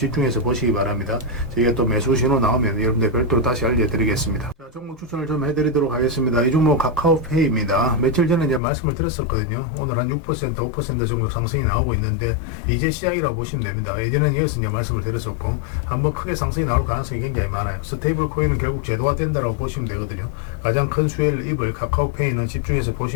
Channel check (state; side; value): drops out; right; at 8.6 s